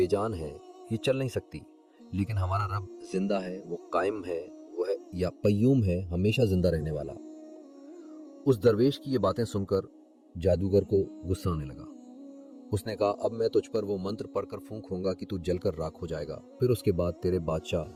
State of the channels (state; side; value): identical; both; correlation 1.00